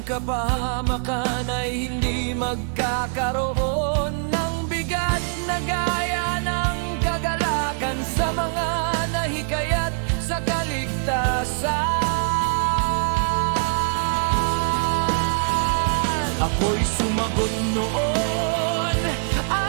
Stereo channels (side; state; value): left; silent; 57 dB below the other